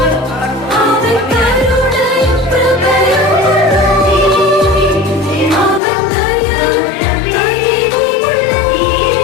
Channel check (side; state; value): right; drops out; at 5.8 s